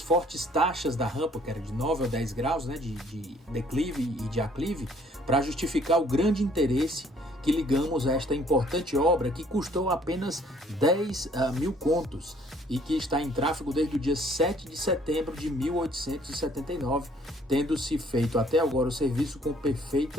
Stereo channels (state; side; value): normal; both; correlation 0.60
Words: taxas da rampa, que era de 9 a 10 graus, né, de declive e de aclive, para justificar o grande interesse que ligamos a esta importante obra, que custou apenas 10 mil contos e que está em tráfego desde o dia 7 de setembro de 1879, tendo-se feito até agora o serviço com